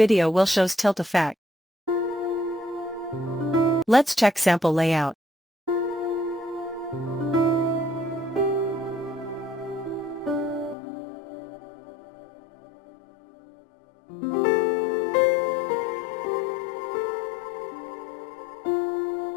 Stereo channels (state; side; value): drops out; right; at 10.8 s